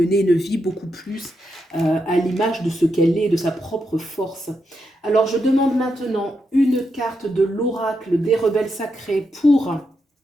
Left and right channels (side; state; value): both; normal; correlation 0.83